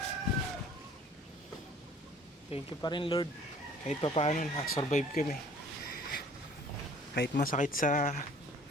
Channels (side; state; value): both; normal; correlation 0.54